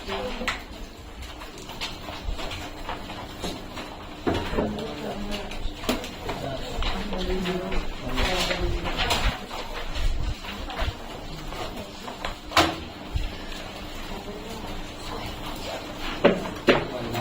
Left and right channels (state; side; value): identical; both; correlation 1.00